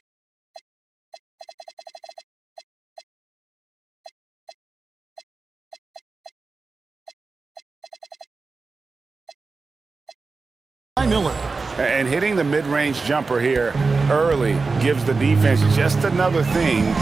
Miller. And hitting the mid-range jumper here early gives the defense just another thing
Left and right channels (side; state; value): left; quieter; 4.2 dB